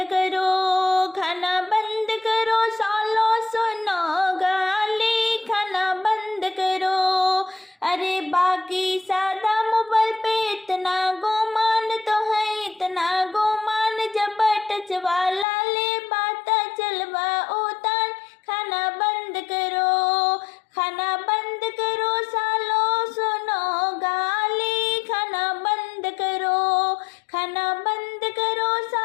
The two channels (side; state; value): right; drops out; at 15.5 s